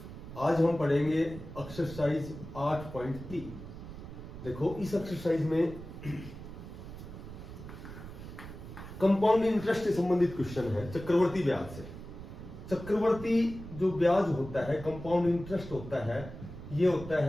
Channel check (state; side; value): noise; right; rumble, 12 dB below the sound